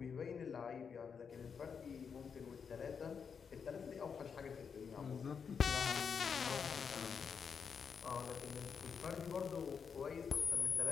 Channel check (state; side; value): quieter; right; 6.4 dB